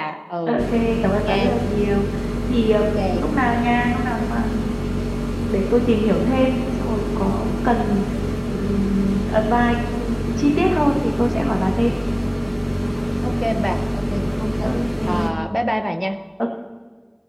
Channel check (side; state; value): both; identical; correlation 1.00